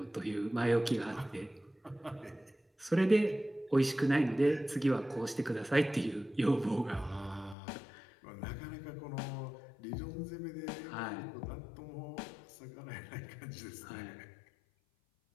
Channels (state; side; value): drops out; right; at 7.6 s